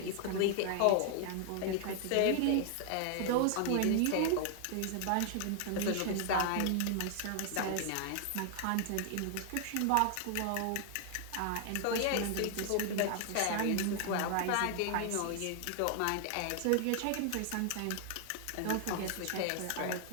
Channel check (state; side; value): different; both; correlation 0.00